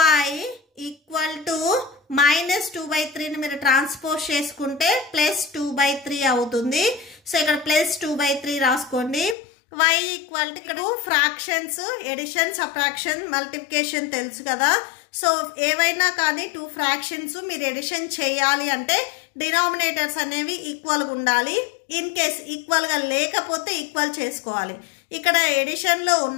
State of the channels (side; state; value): right; drops out; at 9.3 s